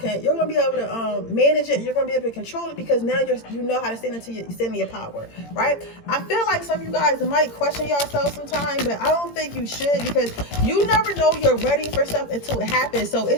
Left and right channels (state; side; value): late; right; 18 ms